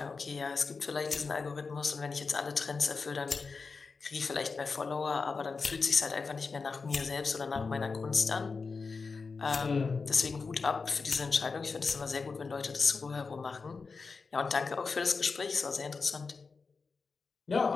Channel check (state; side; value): quieter; right; 4.6 dB